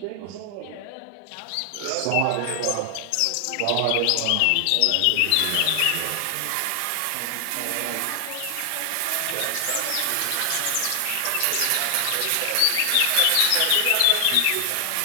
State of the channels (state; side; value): different; both; correlation 0.00